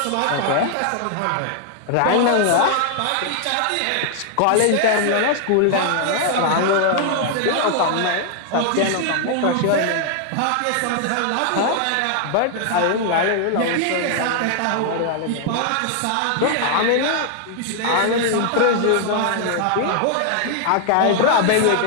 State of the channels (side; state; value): both; different; correlation 0.00